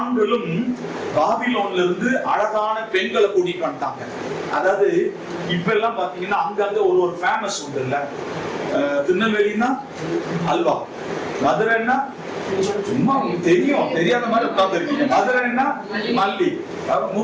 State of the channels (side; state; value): both; identical; correlation 1.00